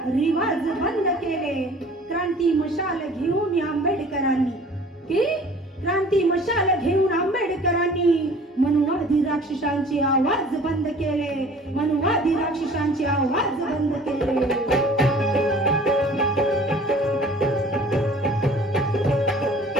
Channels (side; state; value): both; normal; correlation 0.48